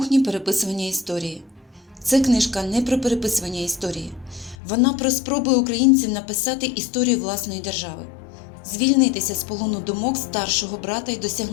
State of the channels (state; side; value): drops out; right; at 4.5 s